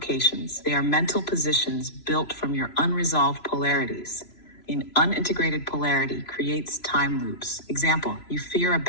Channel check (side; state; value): right; late; 3.0 ms